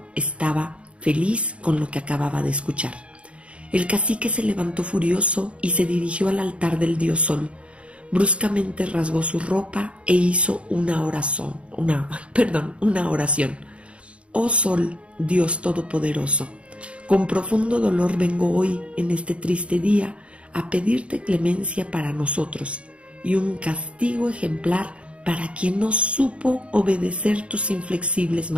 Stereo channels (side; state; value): left; late; 0.060 ms